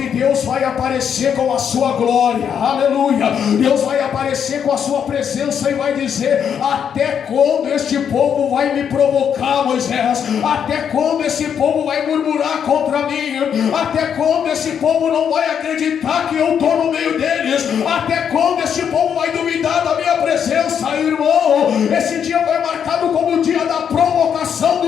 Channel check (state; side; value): quieter; right; 8.0 dB